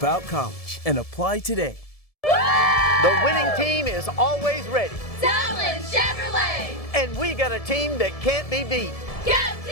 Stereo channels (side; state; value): right; late; 1.7 ms